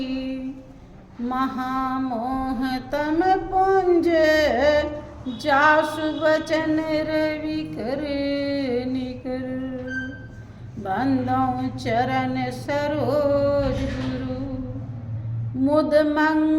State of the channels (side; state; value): both; identical; correlation 1.00